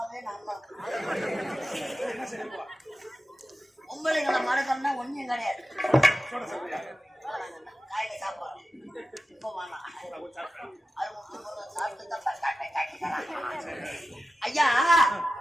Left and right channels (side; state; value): both; normal; correlation 0.93